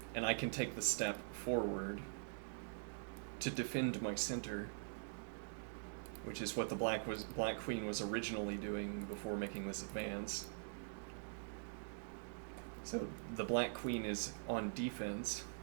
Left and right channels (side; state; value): left; silent; digital silence